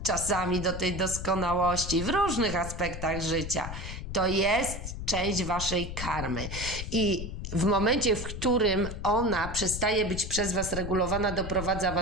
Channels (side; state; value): left; noise; rumble, 7 dB below the sound